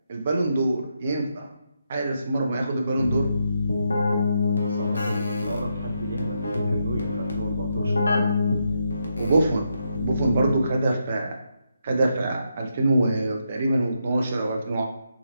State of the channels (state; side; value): inverted; both; correlation -0.81